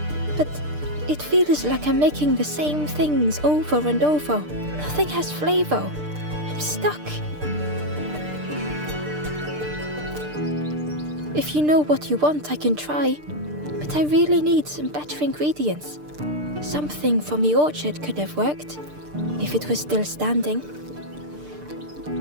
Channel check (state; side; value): late; left; 6.7 ms